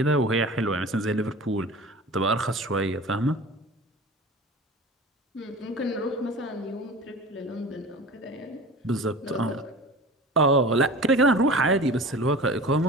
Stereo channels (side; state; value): both; normal; correlation 0.37